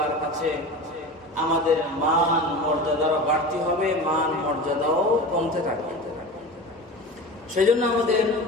কাছে আমাদের মান মর্যাদাও বাড়তি হবে, মান মর্যাদাও কমতে থাকবে। সেজন্য আমাদের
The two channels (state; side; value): normal; both; correlation 0.32